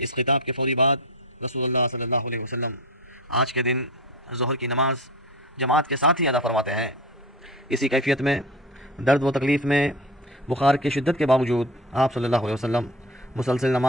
خطاب کے فوری بعد رسول اللہ صلی اللہ علیہ وسلم آج کے دن ظہر کی نماز جماعت کے ساتھ ہی ادا فرماتے ہیں۔ اسی کیفیت میں، درد و تکلیف میں، بخار کی شدت کے باوجود آپ صلی اللہ علیہ وسلم مسلسل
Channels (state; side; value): normal; both; correlation 0.30